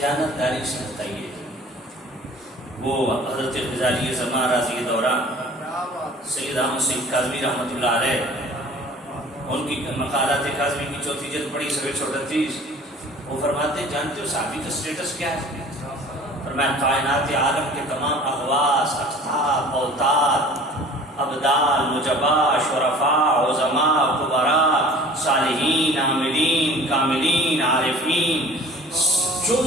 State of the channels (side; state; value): both; normal; correlation 0.46